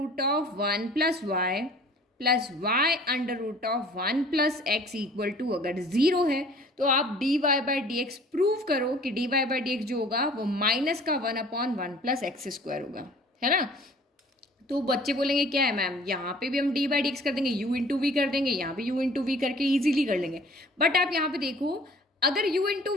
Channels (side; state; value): both; normal; correlation 0.50